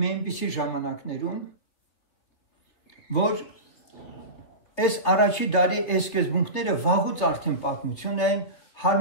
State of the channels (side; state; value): right; late; 3.6 ms